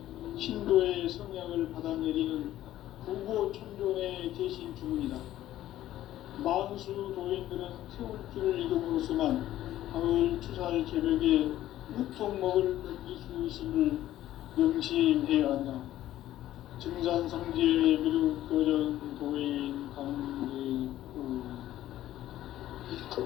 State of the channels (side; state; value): right; quieter; 13.6 dB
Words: 신도의 성향을 받아내리는 부고천존의 대신 주문이다. 만수 도인들은 태울주를 이름으로서만 가을 추살 개벽의 유통목을 넘길 수 있음을 명심해야 한다. 증산상제 미륵도전 도인 강제구